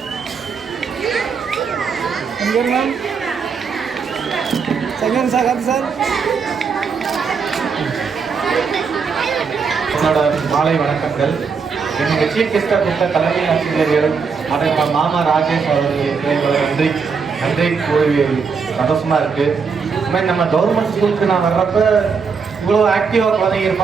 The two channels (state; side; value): quieter; left; 5.6 dB